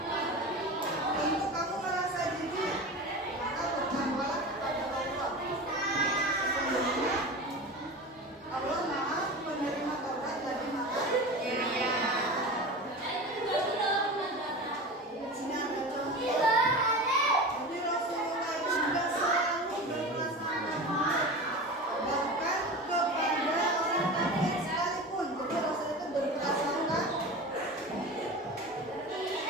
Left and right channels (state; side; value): normal; both; correlation 0.30